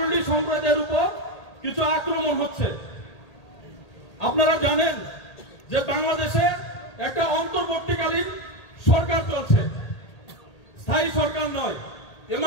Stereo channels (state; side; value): late; right; 1.8 ms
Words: সম্প্রদায়ের উপর কিছু আক্রমণ হচ্ছে। আপনারা জানেন যে বাংলাদেশে একটা অন্তর্বর্তীকালীন সরকার চলছে, স্থায়ী সরকার নয়,